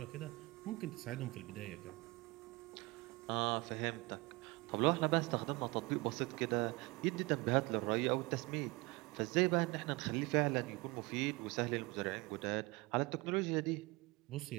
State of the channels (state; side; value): quieter; left; 24.1 dB